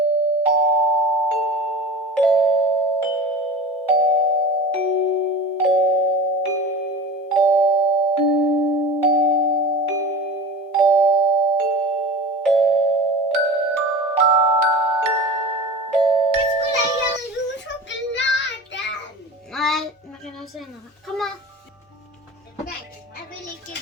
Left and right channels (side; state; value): both; normal; correlation 0.33